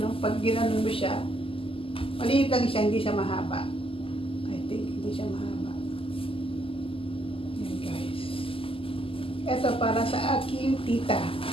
pag ginanon mo siya, maliit lang siya, hindi siya mahaba. I think hindi siya mahaba. Ito para sa aking tita.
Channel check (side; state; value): right; late; 0.26 ms